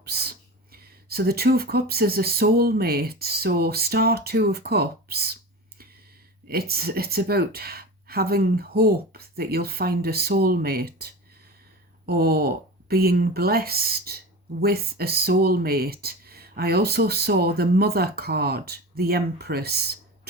So the 2 of Cups is a soulmate. So star 2 of Cups, it's about having hope that you'll find a soulmate or being blessed with a soulmate. I also saw the Mother card, the Empress,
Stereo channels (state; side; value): normal; both; correlation 0.30